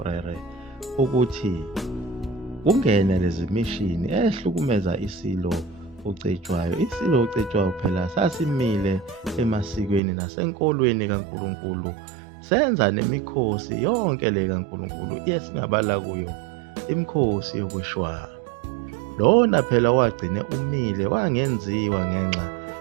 ukuthi kungene lezi mishini ehlukumeza isilo uCetshwayo. Isilo uCetshwayo phela sasimile emasikweni nasenkolweni kaNkulunkulu, senza nemikhosi yonke le kaNkulunkulu esingabala kuyo imikhosi yokushwara. Lona phela wagcine umile, wangenziwa ngenxa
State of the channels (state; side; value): drops out; left; at 10.0 s